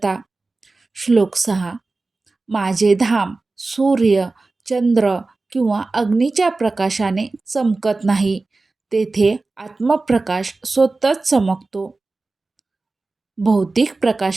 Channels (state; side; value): quieter; left; 3.5 dB